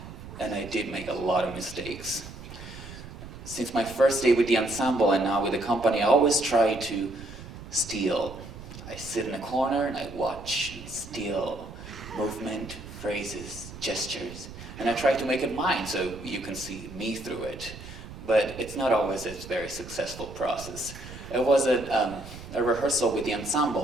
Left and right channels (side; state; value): right; noise; rumble, 13 dB below the sound